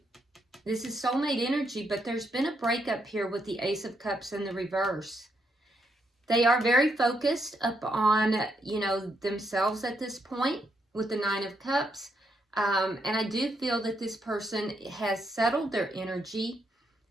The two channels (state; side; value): normal; both; correlation 0.77